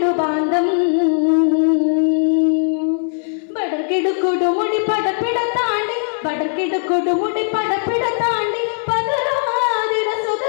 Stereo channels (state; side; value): silent; right; 66 dB below the other